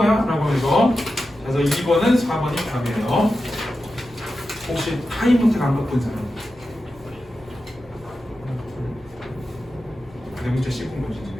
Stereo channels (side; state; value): both; normal; correlation 0.91